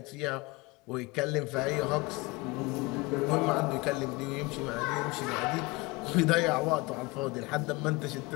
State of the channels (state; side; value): quieter; right; 24.3 dB